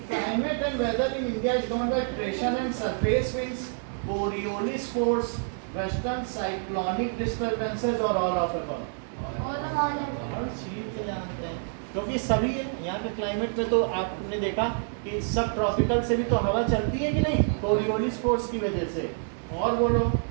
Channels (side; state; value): left; silent; 60 dB below the other